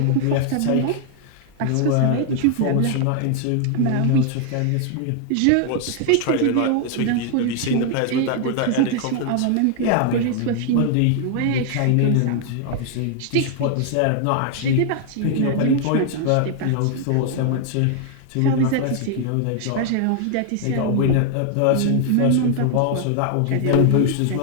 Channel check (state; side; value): different; both; correlation 0.00